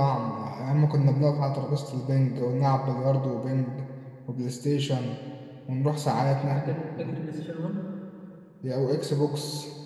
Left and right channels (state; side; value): identical; both; correlation 1.00